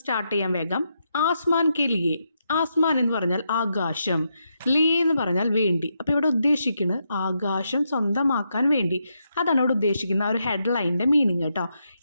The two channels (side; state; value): both; inverted; correlation -0.82